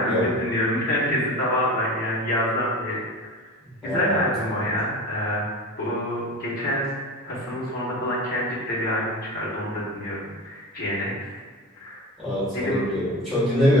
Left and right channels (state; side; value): normal; both; correlation 0.30